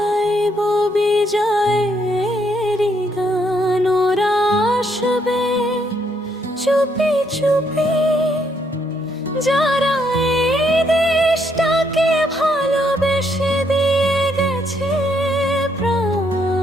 বিজয়ের গান। ওরা আসবে চুপি চুপি, যারা এই দেশটাকে ভালোবেসে দিয়ে গেছে প্রাণ।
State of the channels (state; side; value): normal; both; correlation 0.73